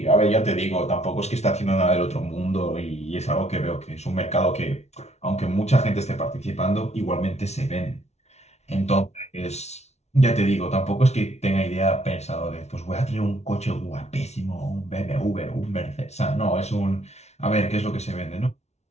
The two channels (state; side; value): late; right; 0.32 ms